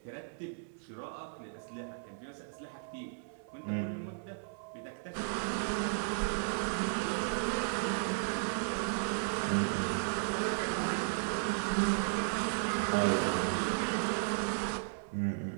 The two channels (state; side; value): silent; left; 54 dB below the other